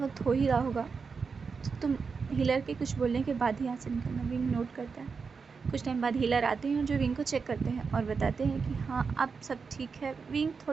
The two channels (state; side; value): quieter; left; 5.2 dB